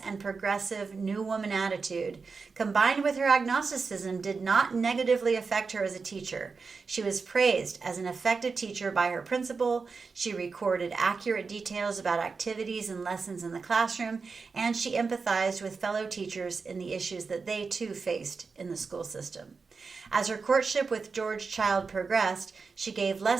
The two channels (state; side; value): quieter; left; 4.8 dB